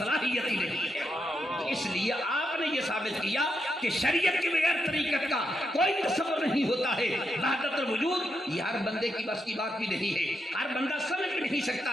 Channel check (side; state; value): both; normal; correlation 0.83